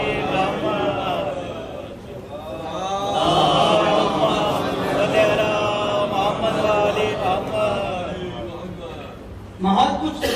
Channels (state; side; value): identical; both; correlation 1.00